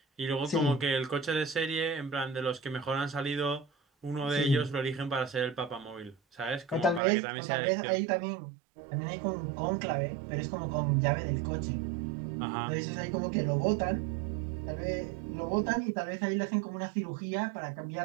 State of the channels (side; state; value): left; drops out; at 7.0 s